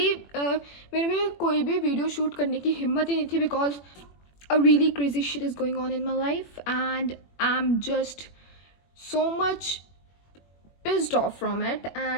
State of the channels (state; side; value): late; right; 21 ms